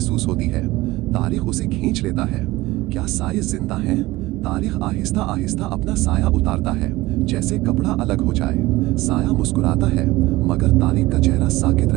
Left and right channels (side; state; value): left; quieter; 19.0 dB